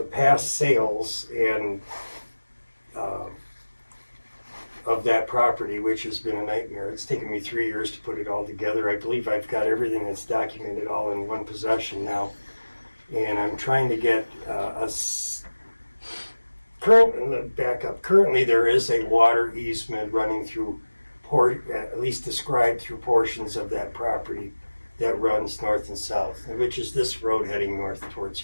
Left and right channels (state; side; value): inverted; both; correlation -1.00